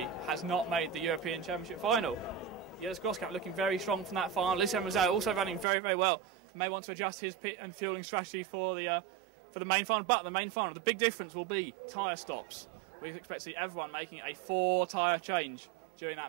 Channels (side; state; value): left; drops out; at 5.7 s